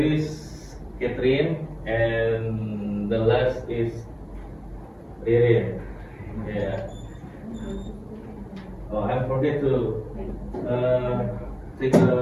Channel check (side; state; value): both; identical; correlation 1.00